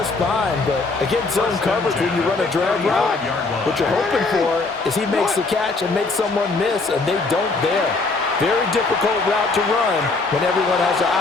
fine, but against zone coverage when you run a drag route, what you're hoping for is he makes the catch and makes someone miss, and they don't there. Very difficult route to run when everyone has their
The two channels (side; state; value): right; quieter; 3.7 dB